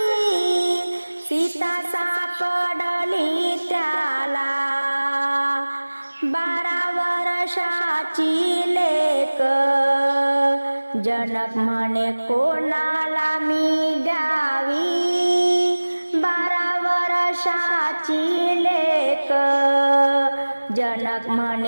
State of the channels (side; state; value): both; inverted; correlation -1.00